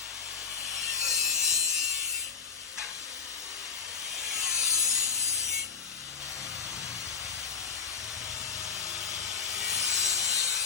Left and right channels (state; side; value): quieter; right; 5.7 dB